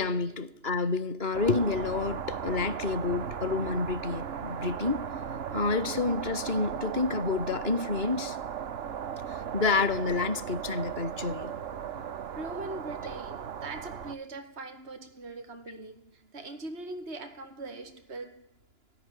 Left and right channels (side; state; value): left; late; 2.9 ms